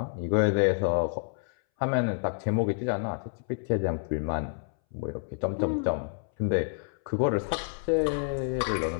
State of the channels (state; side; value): silent; right; 59 dB below the other